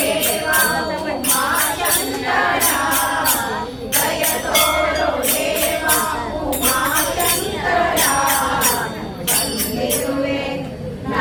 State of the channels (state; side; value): identical; both; correlation 1.00